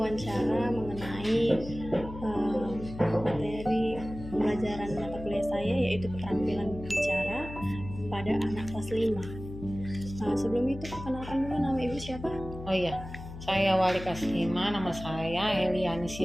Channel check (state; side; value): noise; left; hum, 12 dB below the sound